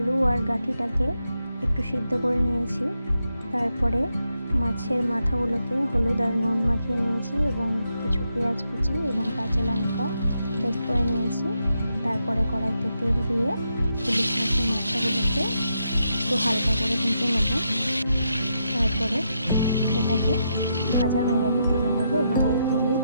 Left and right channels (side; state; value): both; inverted; correlation -0.82